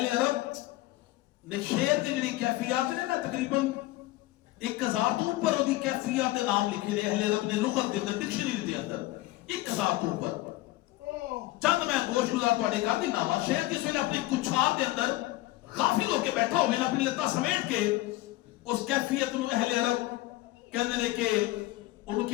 عرب نے شیر دی جڑی کیفیات نے نا تقریباً 1000 تو اوپر دی کیفیات دے نام لکھے نے اہل عرب نے لغت دے اندر ڈکشنری دے اندر 1000 تو اوپر چند میں گوش گزار تواڈے کر دینا وا شیر جس ویلے اپنی کچھار دے اندر غافل ہو کے بیٹھا ہوئے نا اپنی لتا سمیٹ کے اس کیفیت نو اہل عرب کہندے نے کہ انہوں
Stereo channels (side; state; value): right; quieter; 18.1 dB